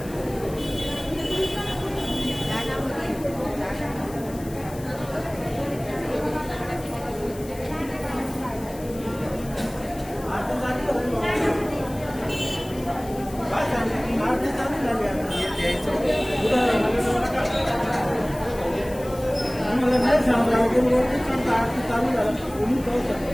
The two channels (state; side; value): noise; left; hiss, 19 dB below the sound